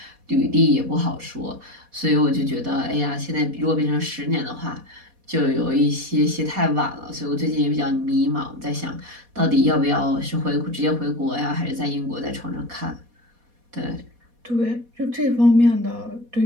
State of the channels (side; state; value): left; late; 4.2 ms